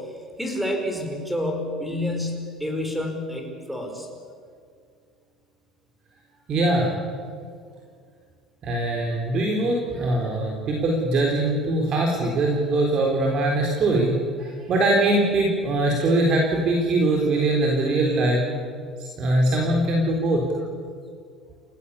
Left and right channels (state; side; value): normal; both; correlation 0.55